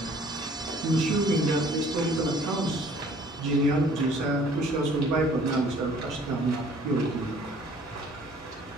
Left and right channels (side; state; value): both; normal; correlation 0.55